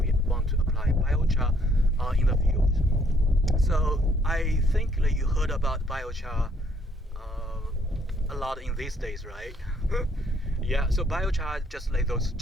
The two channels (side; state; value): both; normal; correlation 0.67